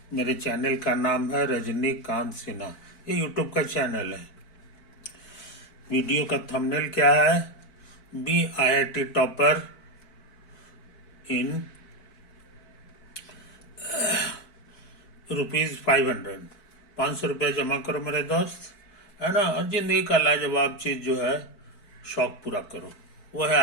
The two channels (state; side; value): late; right; 4.6 ms